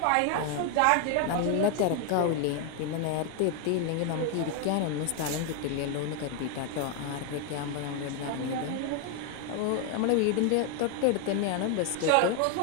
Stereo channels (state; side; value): different; both; correlation 0.01